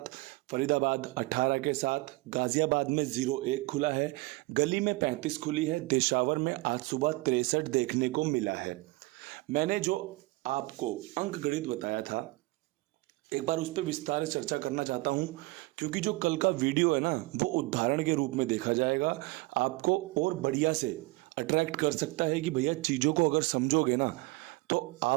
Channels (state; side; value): quieter; left; 22.6 dB